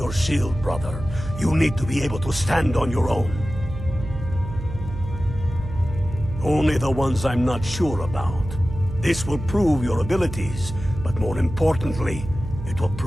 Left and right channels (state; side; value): noise; right; hum, 9 dB below the sound